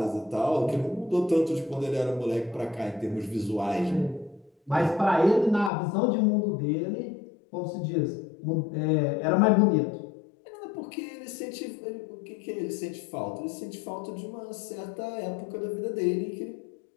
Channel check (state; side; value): drops out; right; at 5.7 s